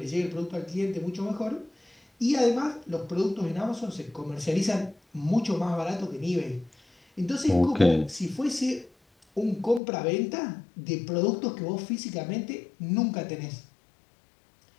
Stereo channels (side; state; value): right; drops out; at 9.8 s